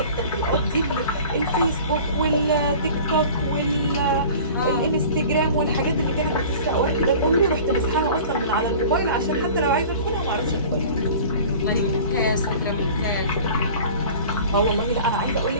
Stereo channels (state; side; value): inverted; both; correlation -0.42